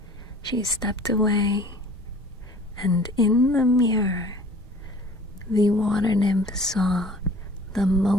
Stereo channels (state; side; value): normal; both; correlation 0.48